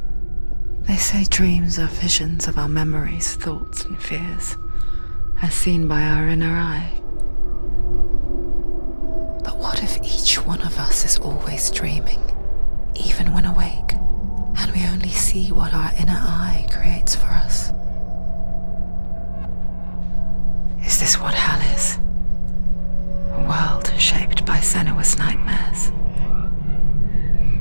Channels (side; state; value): both; inverted; correlation -1.00